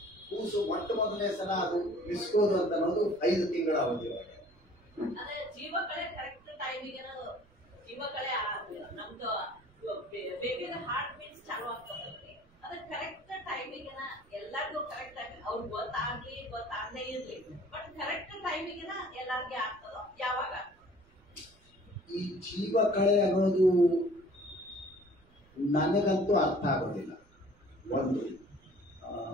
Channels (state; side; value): noise; right; rumble, 29 dB below the sound